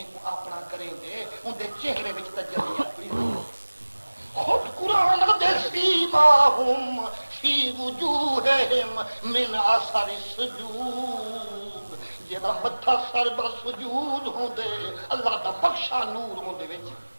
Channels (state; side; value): inverted; both; correlation -1.00